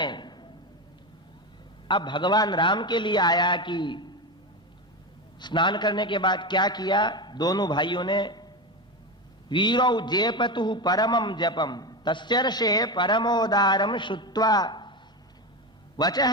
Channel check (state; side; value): normal; both; correlation 0.18